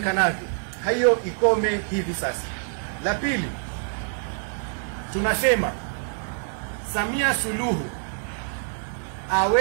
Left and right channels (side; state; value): left; silent; digital silence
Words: hiyo ikome hivi sasa. La pili, tunasema Samia Suluhu